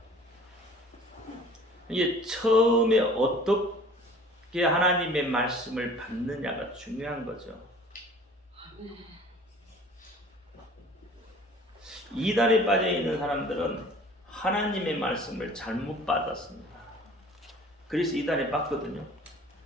이게 처음에 어떻게 하나님의 말씀을 받느냐가 중요한 거죠. 이단에 빠져 있는 사람들은 하나님의 말씀을 잘못 받았습니다. 그래서 이단에 빠거든요.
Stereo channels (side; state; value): both; normal; correlation 0.48